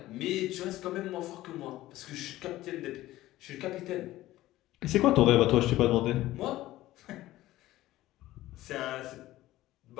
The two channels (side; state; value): right; quieter; 15.9 dB